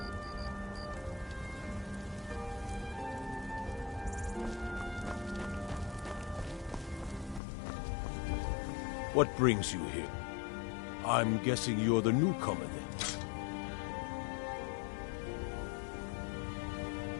What brings you here? I'm guessing you're the newcomer then.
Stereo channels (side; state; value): right; drops out; at 7.4 s